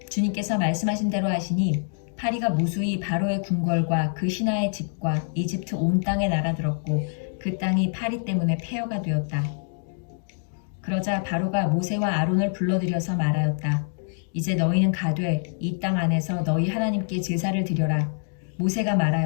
주님께서 말씀하신 대로 하시니 파리가 무수히 바로의 궁궐과 그 신하의 집과 이집트 온 땅에 날아들었고 그 땅이 파리 때문에 폐허가 되었다. 그러자 바로가 모세와 아론을 불러들여서 말하였다. 이제 너희는 가되 이 땅 안에서 너희 하나님께 제사를 드려라. 모세가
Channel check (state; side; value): silent; right; digital silence